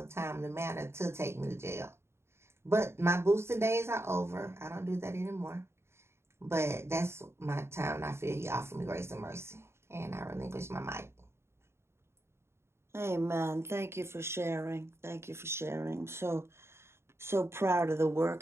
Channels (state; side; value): late; left; 0.12 ms